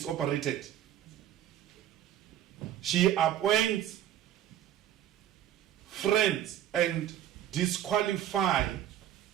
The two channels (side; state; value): left; quieter; 11.4 dB